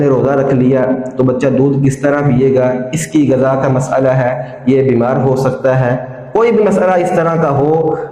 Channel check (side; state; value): both; identical; correlation 1.00